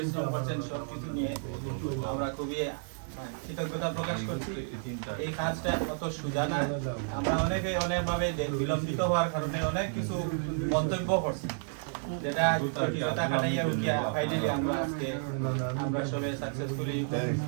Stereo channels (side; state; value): left; silent; 57 dB below the other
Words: করছেন সবকিছু নিয়ে। আমরা খুবই কৃতজ্ঞতা প্রকাশ করছি। এই কাজটা অত সোজা না, আমরা অনেকভাবে বিলম্বিত হওয়ার কারণে অনেক কিছু মন্তব্য করছি, যেটা জটিলতা কাটাইয়া উঠিয়া ফাইনালি আমরা আজকে আমরা সবাই সাকসেসফুলি